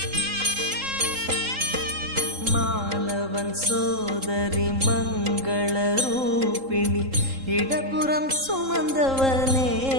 மாலவன் சோதரி மங்கள ரூபிணி இடப்புறம் சுமந்தவனே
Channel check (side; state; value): left; late; 3.7 ms